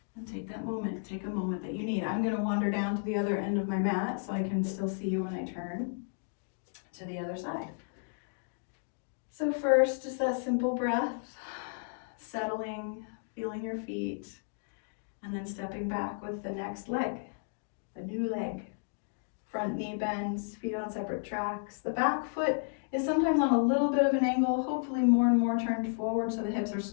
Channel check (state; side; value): silent; right; digital silence